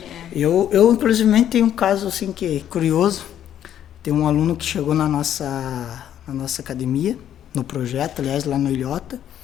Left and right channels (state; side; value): quieter; right; 10.5 dB